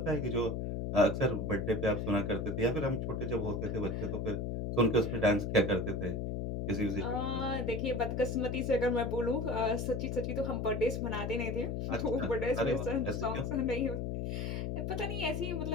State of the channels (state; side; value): noise; left; hum, 2 dB below the sound